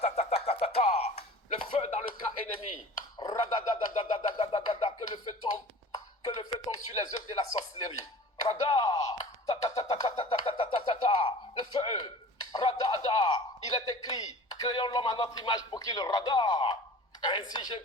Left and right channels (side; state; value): both; normal; correlation 0.42